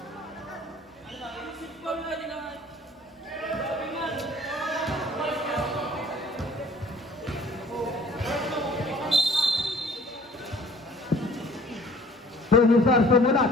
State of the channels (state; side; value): normal; both; correlation 0.53